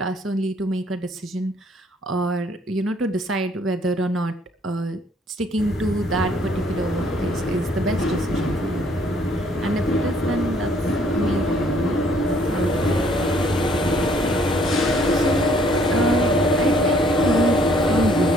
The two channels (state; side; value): normal; both; correlation 0.62